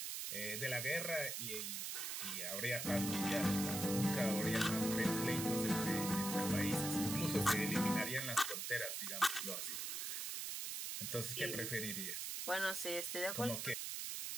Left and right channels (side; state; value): right; noise; hiss, 3 dB below the sound